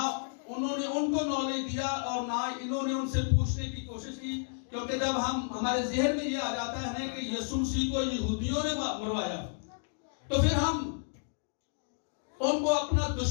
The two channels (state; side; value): silent; right; digital silence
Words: उन्होंने उनको नॉलेज दिया, और ना इन्होंने उनसे पूछने की कोशिश की। क्योंकि जब हमारे ज़हन में ये आ जाता है कि यीशु मसीह को यहूदियों ने मरवाया, तो फिर हम उनको अपना